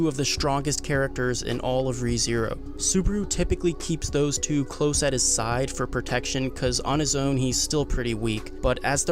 of the strongest characters in all of ReZero. Subaru typically keeps those 2 close at his side for protection, cause on his own he's still pretty weak, but as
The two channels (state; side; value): identical; both; correlation 1.00